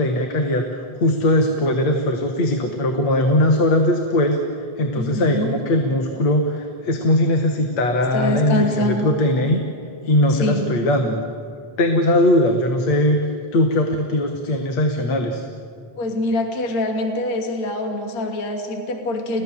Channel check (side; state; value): right; late; 8.6 ms